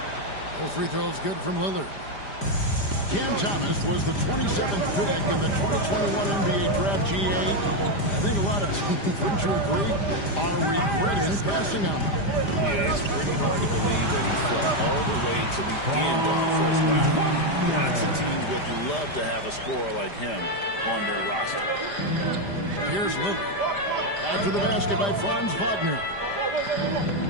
Both free throws good from Lillard. Cam Thomas was the 27th pick in the 2021 NBA Draft GA. I think a lot of teams, wouldn't you agree, are regretting passing on him. Yeah, it's pretty hard to believe that he fell all the way to the end of the first round. Lots of teams would love to have a scorer like him on their roster. Here's Lillard. After the basket by Franz Wagner.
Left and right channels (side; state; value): right; late; 5.0 ms